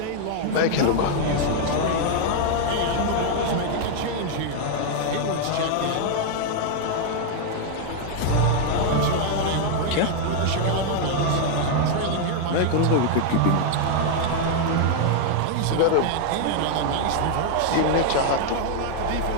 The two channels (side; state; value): both; different; correlation 0.00